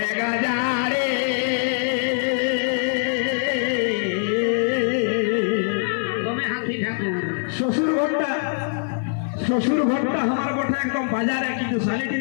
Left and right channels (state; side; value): silent; right; 56 dB below the other